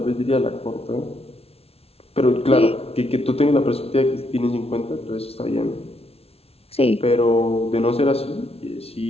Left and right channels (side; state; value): right; late; 0.29 ms